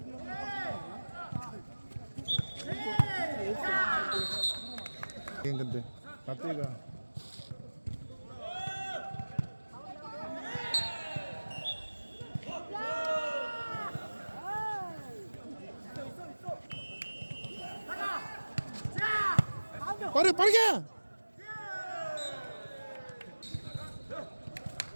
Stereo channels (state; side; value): inverted; both; correlation -1.00